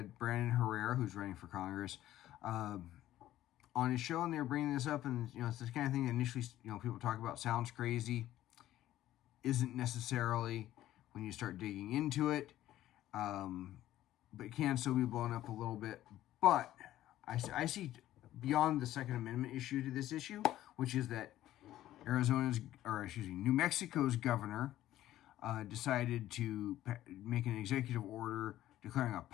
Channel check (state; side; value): quieter; right; 13.7 dB